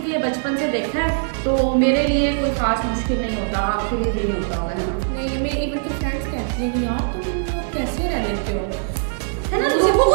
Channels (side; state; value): left; silent; digital silence